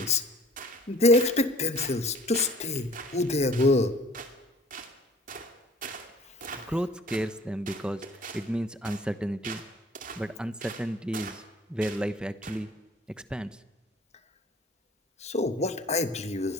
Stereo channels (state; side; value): normal; both; correlation 0.51